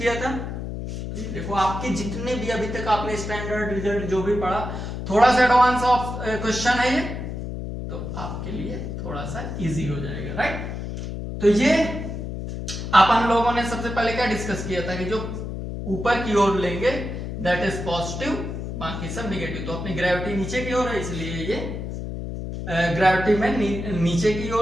था, देखो आपके जितने भी अभी तक आपने स्टैंडर्ड रिजल्ट जो भी पढ़ा, थोड़ा सा एडवांस ऑफ क्वेश्चन है ये, तो आपके लिए थोड़ा सा इजी हो जाएगा, राइट। तो ये अपन लोगों ने सबसे पहले क्या डिस्कस किया था कि जो ऊपर की ओर लेंगे दैट इज पॉजिटिव, बाकी सब नेगेटिव। तो अपनी ग्रेविटी नीचे की ओर है, इसलिए ये ग्रेविटी में नीचे की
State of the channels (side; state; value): left; noise; hum, 6 dB below the sound